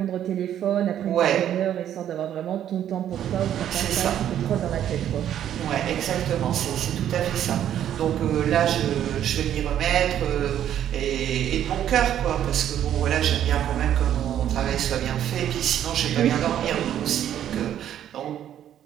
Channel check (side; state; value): left; quieter; 10.6 dB